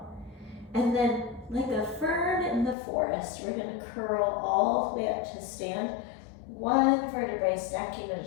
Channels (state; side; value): drops out; right; at 2.8 s